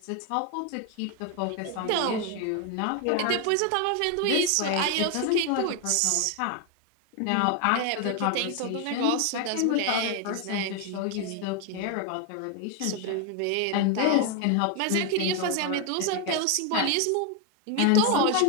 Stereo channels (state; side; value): different; both; correlation 0.01